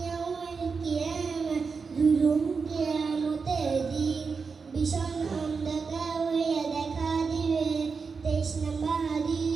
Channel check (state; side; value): quieter; left; 5.1 dB